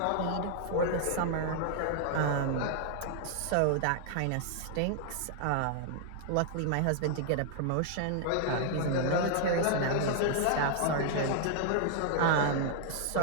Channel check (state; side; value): different; both; correlation 0.00